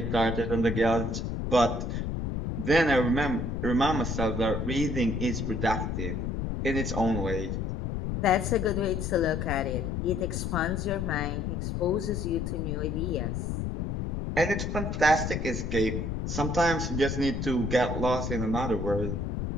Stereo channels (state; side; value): noise; left; rumble, 2 dB below the sound